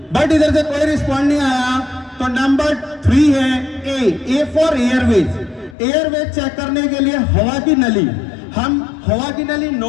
बट इधर से कोई रिस्पॉन्ड नहीं आया तो नंबर 3 है A for airways. Airways check करने के लिए हवा की नली, हम हवा की नली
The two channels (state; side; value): drops out; right; at 5.8 s